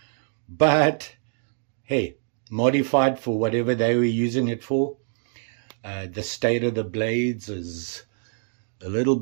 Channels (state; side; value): silent; left; digital silence